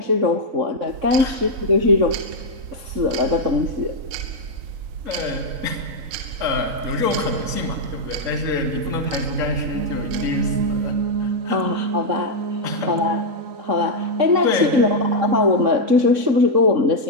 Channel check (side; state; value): left; late; 3.8 ms